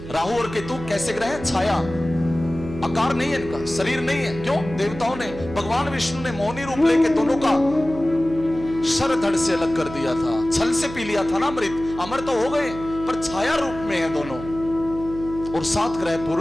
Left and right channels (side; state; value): right; noise; hum, 12 dB below the sound